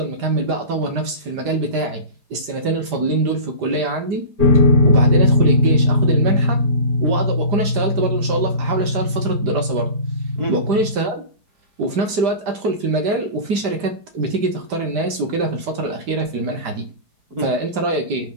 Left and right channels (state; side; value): late; left; 5.0 ms